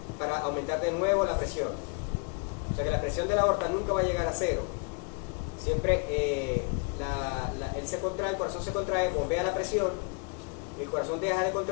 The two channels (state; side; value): quieter; right; 34.4 dB